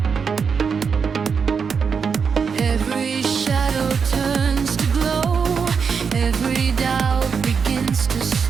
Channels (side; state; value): left; quieter; 6.0 dB